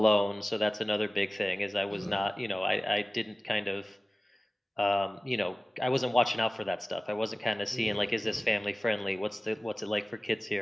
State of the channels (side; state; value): both; normal; correlation 0.97